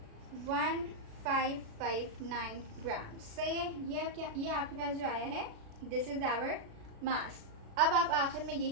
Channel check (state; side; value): late; left; 36 ms